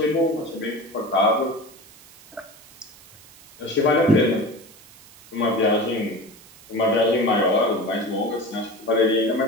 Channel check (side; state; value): right; noise; hiss, 23 dB below the sound